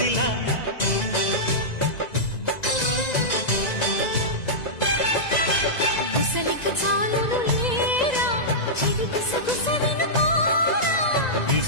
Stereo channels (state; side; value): late; right; 2.0 ms